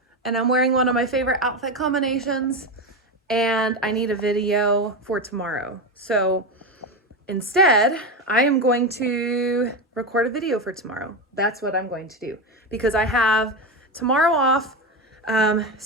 and I'm wearing one of my favorite outfit combinations, and I need a video for tomorrow. So instead, I am going to record a video for tomorrow. That's what I'm going to do because I have tomorrow off.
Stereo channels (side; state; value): both; normal; correlation 0.15